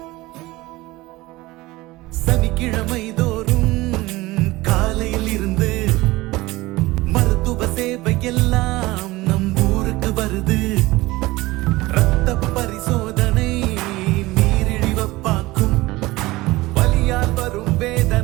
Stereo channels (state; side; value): quieter; left; 19.9 dB